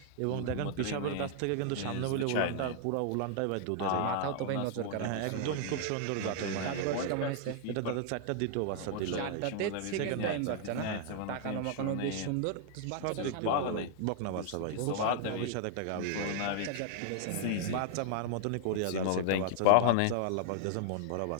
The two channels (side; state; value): both; different; correlation 0.00